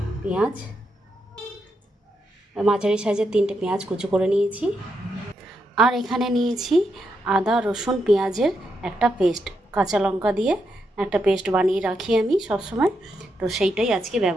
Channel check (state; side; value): normal; both; correlation 0.82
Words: পেঁয়াজ, মাঝারি সাইজের 3টে পেঁয়াজ কুচো করে নিয়েছি। আর এখানে নিয়েছি আদা রসুন পেঁয়াজের একটা পেস্ট, কাঁচা লঙ্কা দিয়ে একটা পেস্ট বানিয়ে রাখি আমি সবসময়। তো সেইটাই আজকে